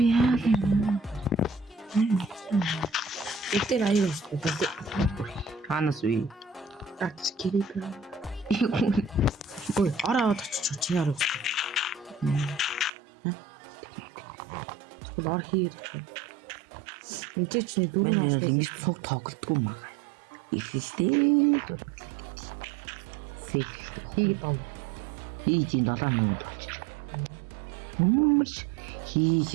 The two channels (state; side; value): drops out; left; at 12.9 s